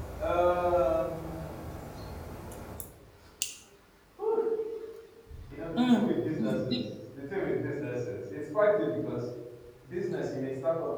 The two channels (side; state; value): both; identical; correlation 1.00